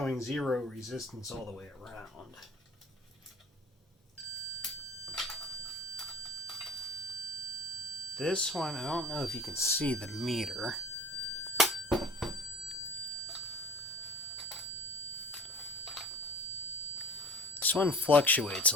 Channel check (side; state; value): both; normal; correlation 0.43